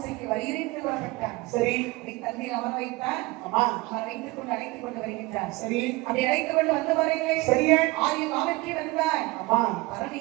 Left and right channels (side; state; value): left; quieter; 21.7 dB